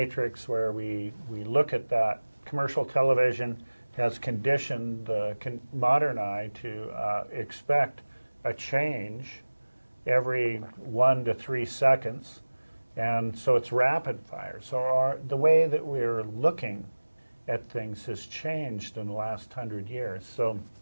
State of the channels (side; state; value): both; inverted; correlation -1.00